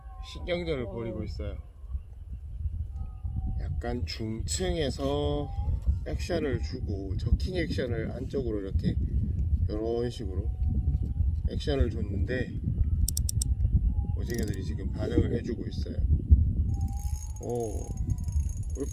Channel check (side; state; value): both; identical; correlation 1.00